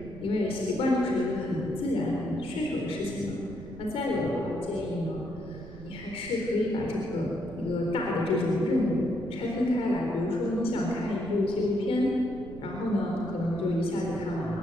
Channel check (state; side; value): noise; right; rumble, 15 dB below the sound